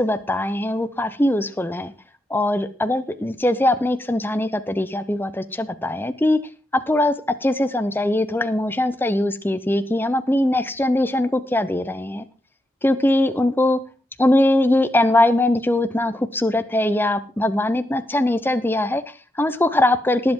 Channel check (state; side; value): normal; both; correlation 0.83